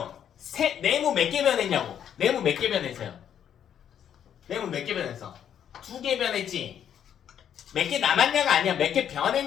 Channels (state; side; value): quieter; right; 9.3 dB